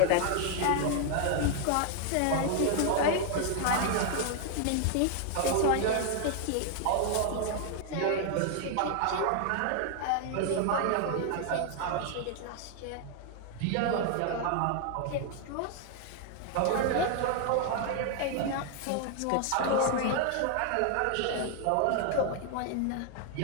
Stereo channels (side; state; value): both; different; correlation 0.00